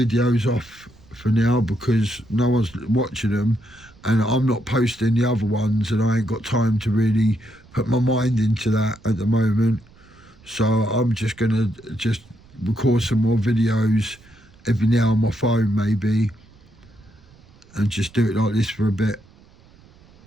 off for now because no one's watching them, and I'm not posting the other ones, and I ain't got time to really put my mind into that at the moment. So I'm just going to record some more videos every now on my phone maybe, and just do it like this for a bit.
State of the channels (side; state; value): right; noise; rumble, 26 dB below the sound